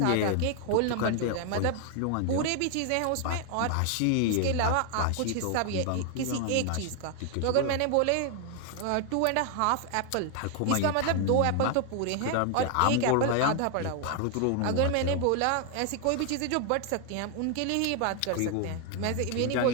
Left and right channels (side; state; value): both; different; correlation 0.00